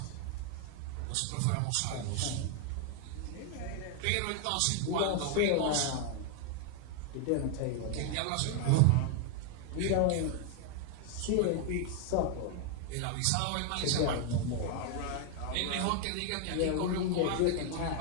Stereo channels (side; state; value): both; different; correlation 0.00